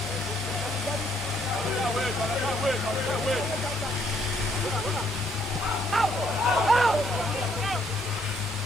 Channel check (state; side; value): normal; both; correlation 0.69